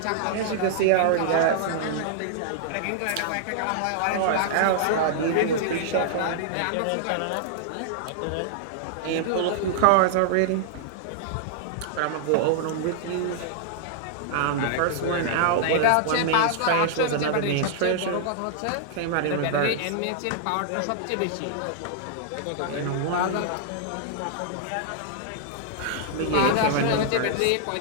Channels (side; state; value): both; different; correlation -0.01